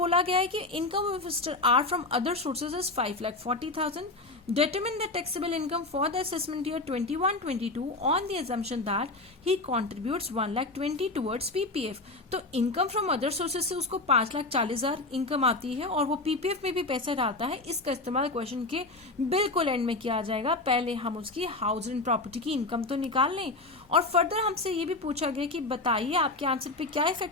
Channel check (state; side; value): quieter; right; 3.0 dB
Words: गया है कि income of mister R from other sources is 5,40,000। Determine the taxable income for the assessment year 21-22 on the assumption that he contributes 1,20,000 towards PPF। तो इनकम फ्रॉम अदर सोर्सेज से उसको 5,40,000 इनकम आती है और वो पीपीएफ में भी पैसा डालता है। इसका इस्तेमाल क्वेश्चन के बिल्कुल एंड में किया जाएगा। पहले हम उसकी हाउस एंड प्रॉपर्टी की इनकम तो निकाल लें, और फर्दर हमसे ये भी पूछा गया कि बताइए आपके आंसर पे क्या